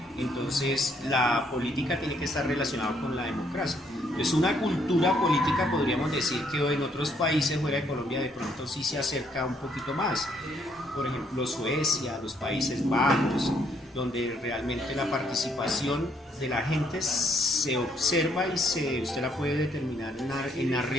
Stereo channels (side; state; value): both; normal; correlation 0.69